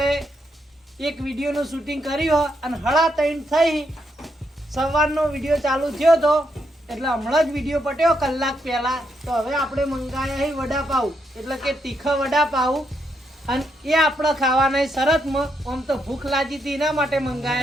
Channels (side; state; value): both; normal; correlation 0.79